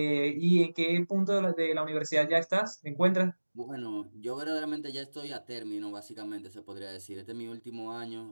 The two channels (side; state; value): both; inverted; correlation -1.00